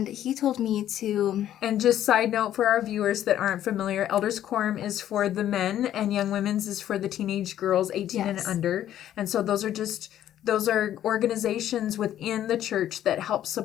he told me to... And just side note for our viewers that aren't familiar, Elders Quorum is for the men and Young Women's is for the teenage girls 18 and under. And so those are organizations within the church that help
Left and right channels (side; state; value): right; quieter; 11.6 dB